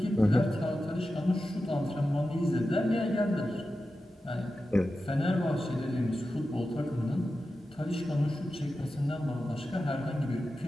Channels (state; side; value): normal; both; correlation 0.92